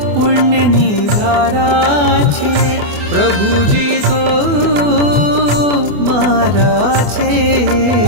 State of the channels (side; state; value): left; late; 24 ms